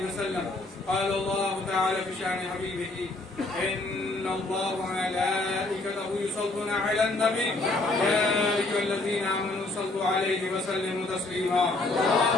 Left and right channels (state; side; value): quieter; right; 3.0 dB